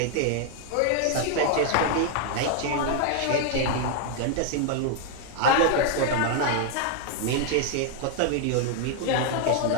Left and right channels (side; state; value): both; different; correlation 0.00